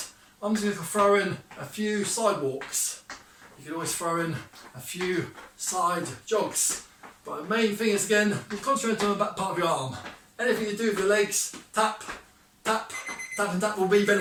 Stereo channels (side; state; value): both; identical; correlation 1.00